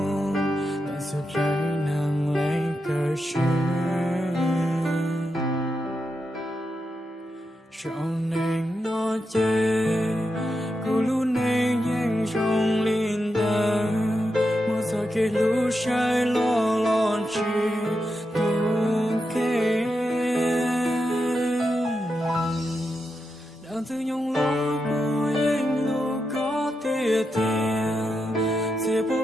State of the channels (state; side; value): normal; both; correlation 0.86